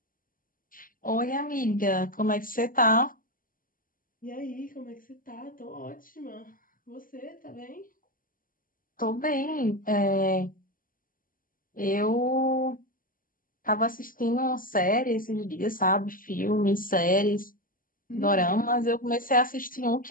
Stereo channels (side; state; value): right; late; 0.41 ms